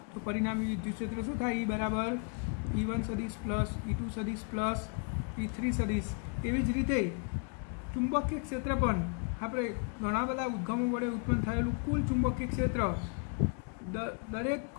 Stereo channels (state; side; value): quieter; right; 38.3 dB